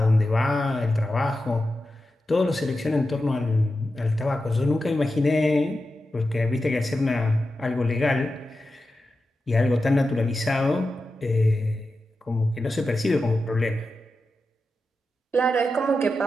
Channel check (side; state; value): both; normal; correlation 0.91